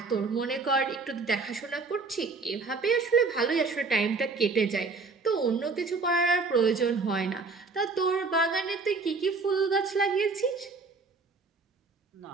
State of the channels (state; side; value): quieter; left; 4.1 dB